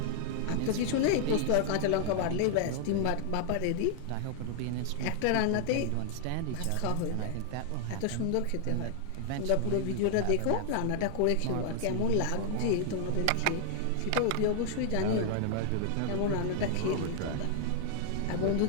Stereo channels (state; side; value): different; both; correlation 0.00